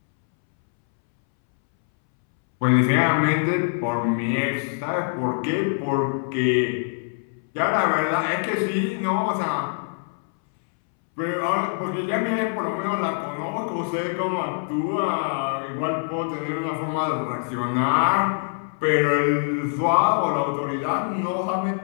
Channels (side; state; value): right; silent; 63 dB below the other